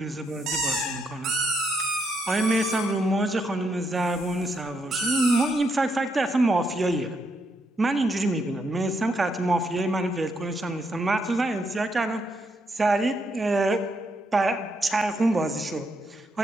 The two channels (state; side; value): normal; both; correlation 0.78